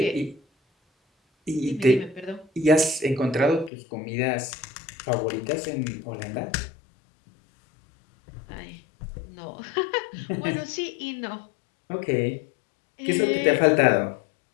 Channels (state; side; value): drops out; right; at 3.7 s